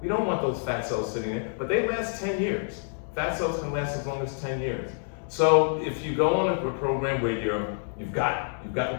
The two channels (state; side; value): silent; right; digital silence